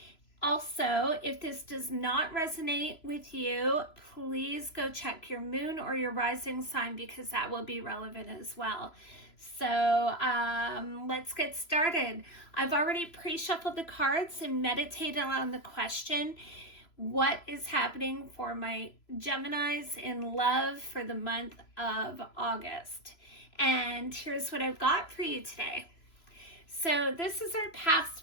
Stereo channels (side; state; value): right; late; 3.0 ms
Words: Also, if this does not resonate with you, please go check your moon or your rising sign because that will be relevant as well. So let's get started. I've already pre-shuffled the cards and meditated on the question, what is happening for my Geminis in love for the month of August? And here's what I've got for you today. So this is our